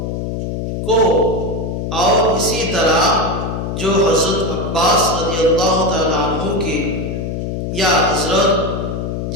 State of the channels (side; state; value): left; noise; hum, 3 dB below the sound